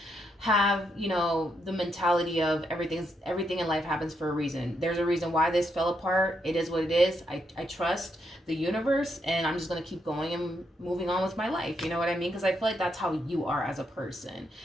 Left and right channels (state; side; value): normal; both; correlation 0.79